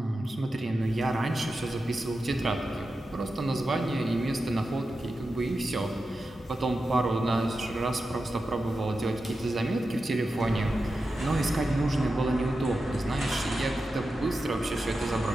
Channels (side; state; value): both; normal; correlation 0.91